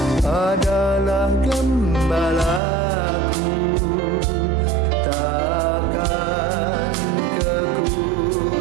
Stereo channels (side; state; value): left; drops out; at 2.6 s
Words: adalah gembalaku, takkan